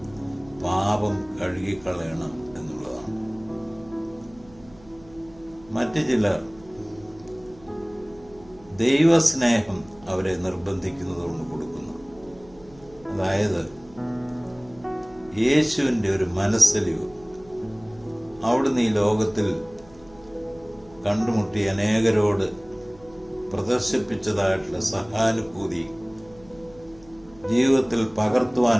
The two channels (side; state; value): right; noise; hum, 25 dB below the sound